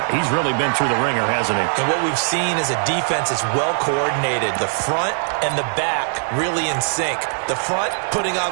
He's really been through the ringer, hasn't he? And what we've seen is a defense that's well coordinated. The front and the back really in sync. The front putting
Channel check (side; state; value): left; silent; digital silence